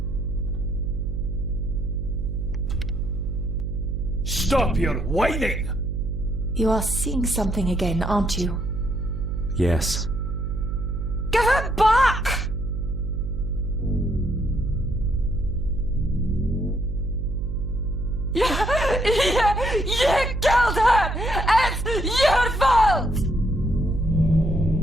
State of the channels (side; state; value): right; noise; hum, 3 dB below the sound